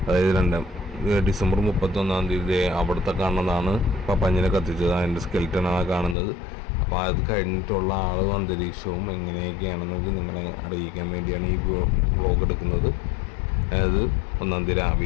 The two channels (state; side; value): drops out; right; at 6.2 s